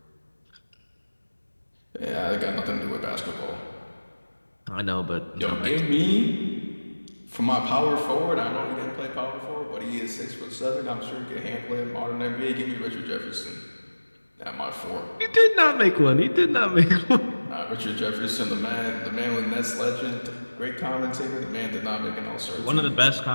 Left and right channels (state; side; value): inverted; both; correlation -1.00